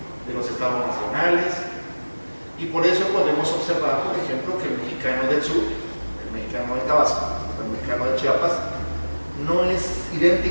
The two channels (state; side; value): inverted; both; correlation -1.00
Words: de los estados nacionales, y por eso podemos observar, por ejemplo, que el mexicano del sur, el mexicano de Tabasco, el mexicano de Chiapas, no es